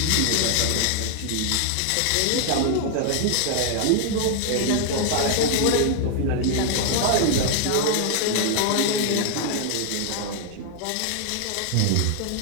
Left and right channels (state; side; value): different; both; correlation 0.00